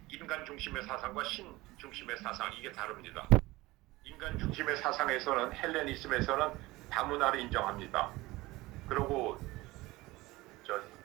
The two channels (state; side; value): quieter; left; 20.1 dB